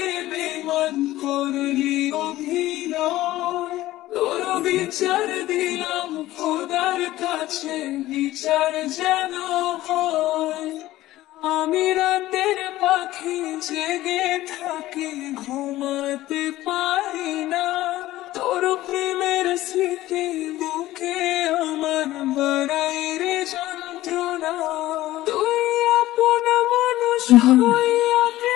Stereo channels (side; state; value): right; quieter; 15.9 dB